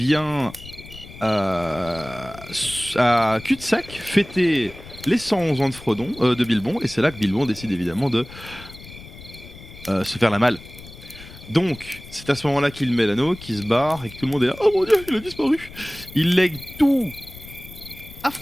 à cul-de-sac fêter les 111 ans de Frodon, de Bilbon, et c'est là que Bilbon décide évidemment de se faire la malle. Donc, c'est à ce moment-là qu'il met l'anneau, qu'il se barre, et que tout le monde est là, oh mon dieu, il a disparu. Il lègue tout à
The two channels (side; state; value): left; noise; rumble, 17 dB below the sound